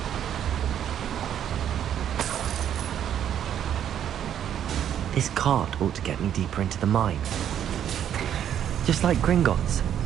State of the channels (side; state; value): left; quieter; 9.8 dB